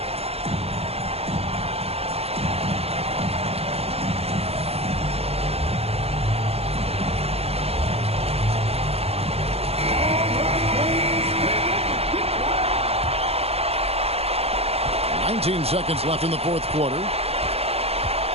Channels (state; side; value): late; left; 0.29 ms